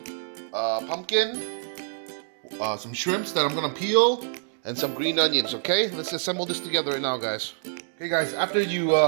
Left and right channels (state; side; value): silent; left; digital silence